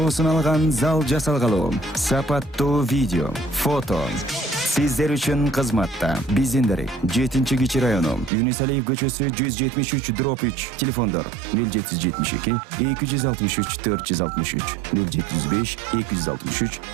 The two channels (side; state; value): left; drops out; at 8.3 s